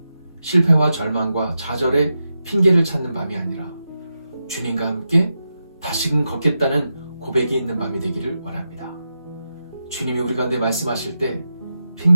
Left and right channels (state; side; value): inverted; both; correlation -0.89